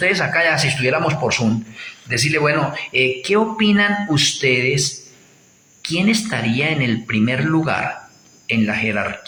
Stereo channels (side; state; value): both; identical; correlation 1.00